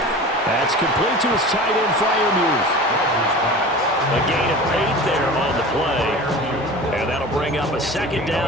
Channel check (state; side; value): normal; both; correlation 0.36